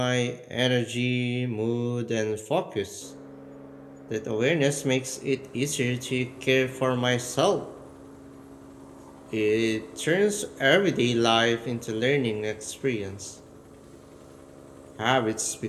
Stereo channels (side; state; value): both; identical; correlation 1.00